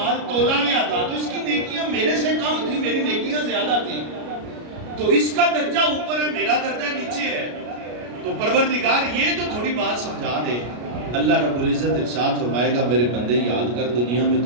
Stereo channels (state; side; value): late; left; 33 ms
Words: تولا گیا تھا تو اس کی نیکیاں میرے سے کم تھی، میری نیکیاں زیادہ تھی، تو اس کا درجہ اوپر ہے میرا درجہ نیچے ہے، تو پروردگار یہ تو تھوڑی بات سمجھا دے۔ اللہ رب العزت ارشاد فرمائے گا میرے بندے یاد کر دنیا میں